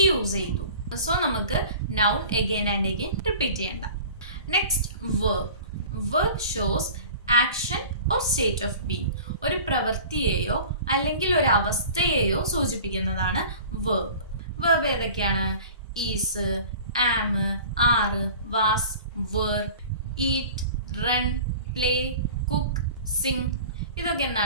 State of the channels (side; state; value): both; inverted; correlation -0.41